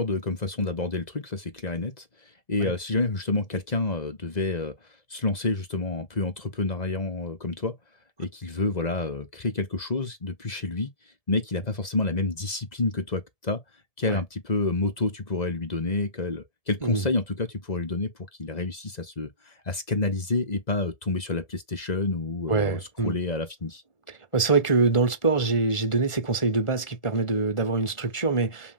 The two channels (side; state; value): right; late; 2.0 ms